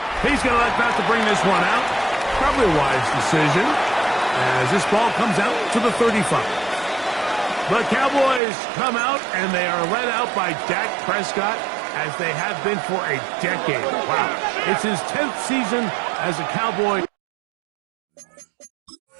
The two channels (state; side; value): drops out; left; at 8.4 s